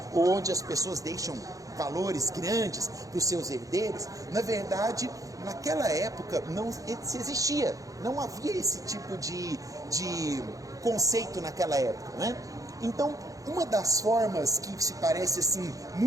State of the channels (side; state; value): left; late; 0.17 ms